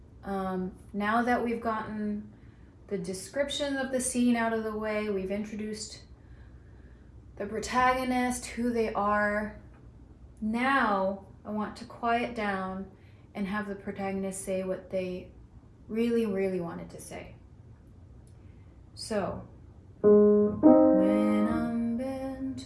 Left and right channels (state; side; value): identical; both; correlation 1.00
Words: Now that we've gotten the description of the scene out of the way, we've introduced the protagonist, who they are. Now I want to quiet down and have the protagonist say what they really, really wanted to say. So, when I'm